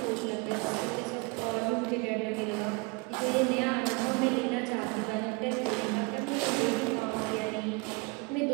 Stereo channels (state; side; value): quieter; left; 29.2 dB